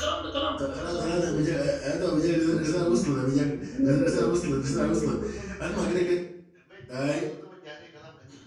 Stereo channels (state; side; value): identical; both; correlation 1.00